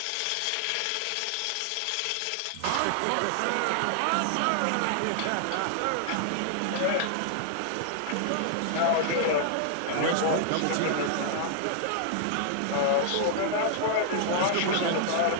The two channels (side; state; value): both; different; correlation 0.00